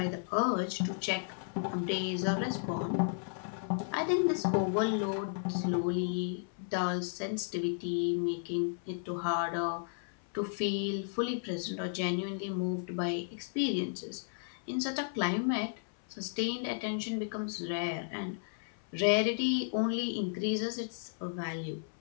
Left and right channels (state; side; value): silent; right; 55 dB below the other